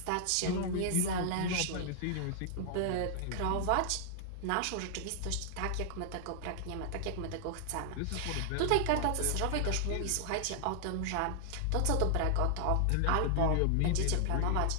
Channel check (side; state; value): both; different; correlation -0.01